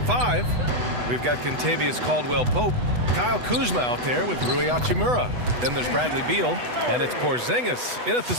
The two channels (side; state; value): left; late; 8.1 ms